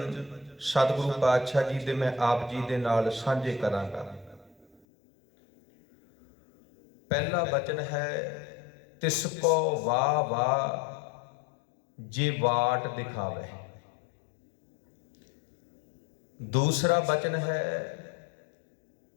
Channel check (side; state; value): right; drops out; at 4.8 s